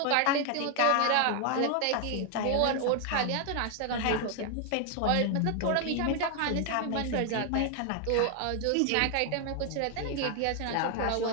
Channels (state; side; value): different; both; correlation 0.00